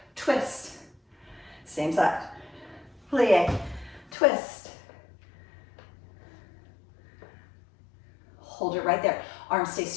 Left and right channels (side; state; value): right; drops out; at 4.2 s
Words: twist. Same side. Plie, twist. Hold it right there. Arms stay